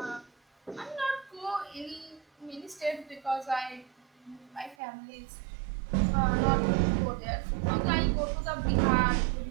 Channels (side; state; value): left; drops out; at 4.8 s